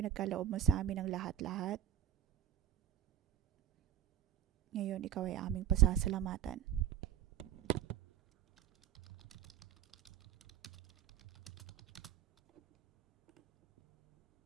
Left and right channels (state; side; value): quieter; left; 10.9 dB